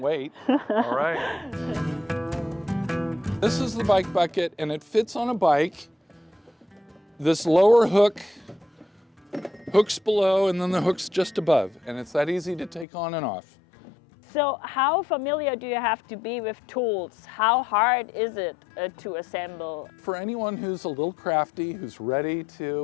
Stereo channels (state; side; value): drops out; right; at 12.9 s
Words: All right. This is the bike bucket and it fits on a bike. This lower hook hooks below and then the hook's just above, and it's that easy to take on and off. So how familiar do you have to be with tools? How hard is it to assemble? For anyone who's a little crafty, who's ready